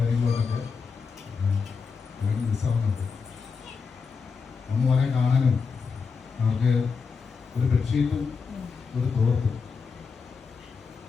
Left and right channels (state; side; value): quieter; right; 5.3 dB